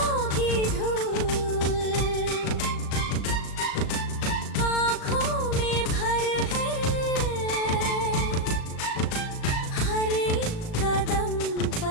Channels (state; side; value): late; right; 37 ms